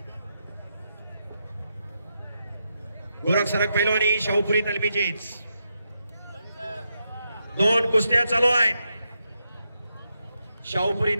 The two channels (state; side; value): inverted; both; correlation -0.84